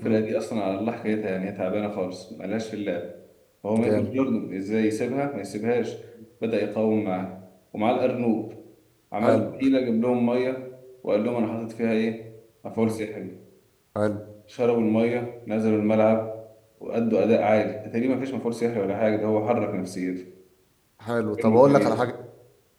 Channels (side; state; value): both; identical; correlation 1.00